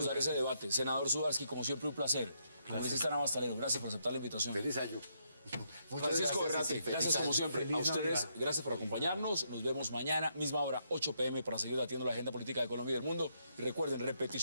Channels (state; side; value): inverted; both; correlation -0.77